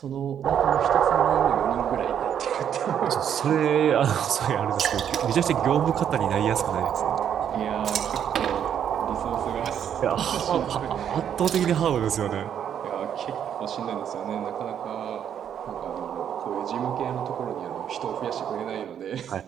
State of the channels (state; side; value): quieter; left; 9.0 dB